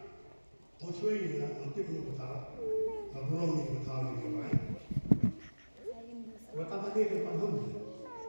Masuk ini lah, nanti punya betul, belum ni betul diurai. Betul tadi depan hum,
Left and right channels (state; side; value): inverted; both; correlation -1.00